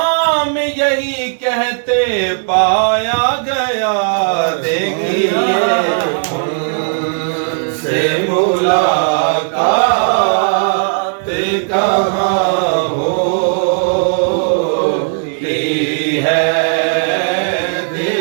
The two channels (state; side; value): silent; left; digital silence